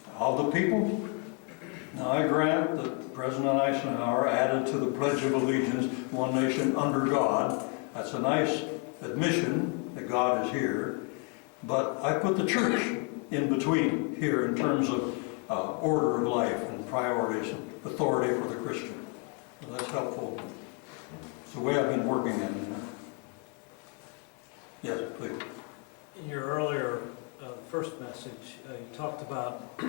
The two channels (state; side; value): quieter; right; 34.0 dB